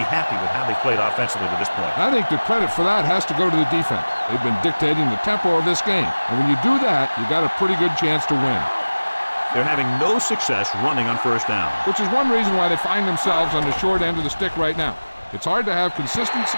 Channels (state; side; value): inverted; both; correlation -1.00